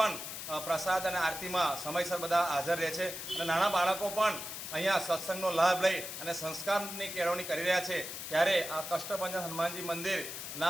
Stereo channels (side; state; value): left; noise; hiss, 7 dB below the sound